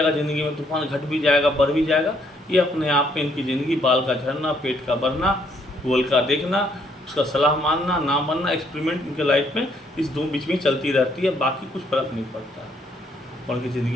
ज़िंदगी में, तूफान घट भी जाएगा, बढ़ भी जाएगा। ये अपने आप में इनकी ज़िंदगी बाल का झड़ना, पेट का बढ़ना, गूगल का देखना, उसका सलाह मानना, ना मानना, एक्सपेरिमेंट इनके लाइफ में इस दो बीच में चलती रहती है। बाकी कुछ फ़र्क नहीं पड़ता है। और उनकी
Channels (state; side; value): normal; both; correlation 0.69